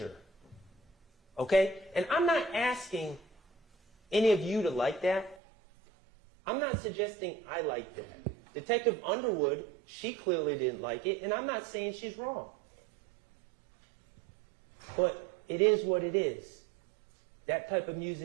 Okay? And I'm not asking any of you to like that. I'm not suggesting I like that. Detective Underwood, she clearly didn't like it, and I'm not saying she's wrong. But it is what it is. That type of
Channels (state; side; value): drops out; left; at 5.4 s